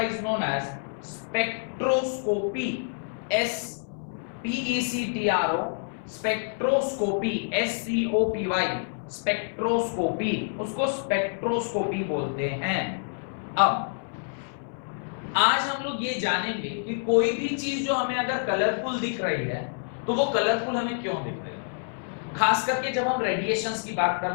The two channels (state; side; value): silent; right; 60 dB below the other